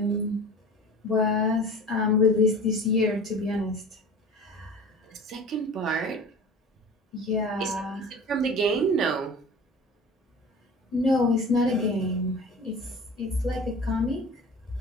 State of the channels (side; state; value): both; normal; correlation 0.38